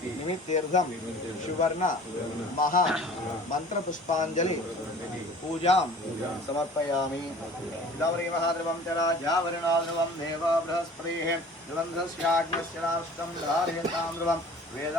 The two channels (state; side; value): normal; both; correlation 0.47